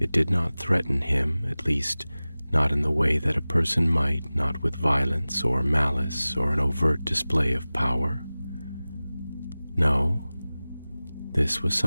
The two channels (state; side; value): inverted; both; correlation -0.98